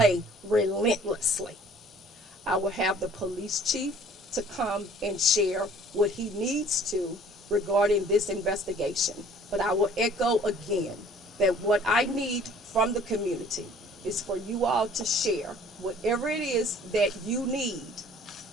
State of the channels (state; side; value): normal; both; correlation 0.53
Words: relentlessly. I will have the police chief to come and share what he needs to regarding this investigation. But I will echo again that what I need from the community is for you all to share whatever it is that you need,